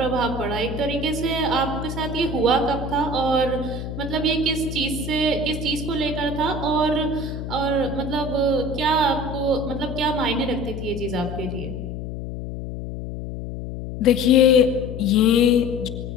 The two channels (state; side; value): noise; left; hum, 7 dB below the sound